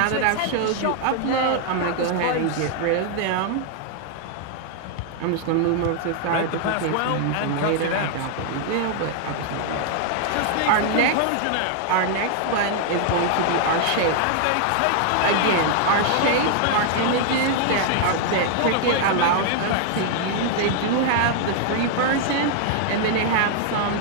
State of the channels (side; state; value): both; different; correlation 0.00